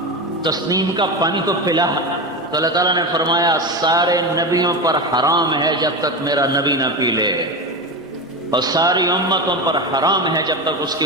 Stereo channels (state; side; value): normal; both; correlation 0.20